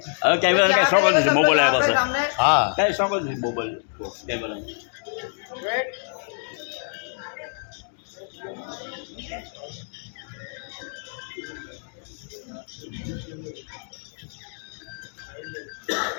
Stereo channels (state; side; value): silent; right; digital silence